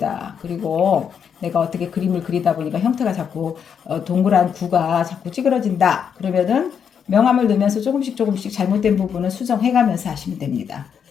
그리고 내가 어떻게 그림을 그리다 보니까 형태가 자꾸 동그란 구가 자꾸 찌그러진다. 그러면은 명암을 넣으면서 조금씩 잘못된 부분은 수정해가면서 하시면 됩니다.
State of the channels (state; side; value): quieter; right; 7.5 dB